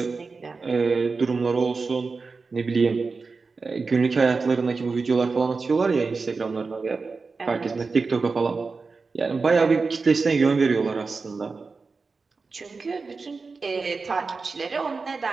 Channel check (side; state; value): left; quieter; 4.3 dB